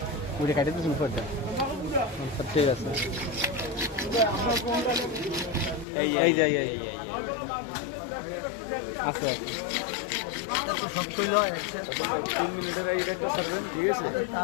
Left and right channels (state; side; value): drops out; right; at 5.9 s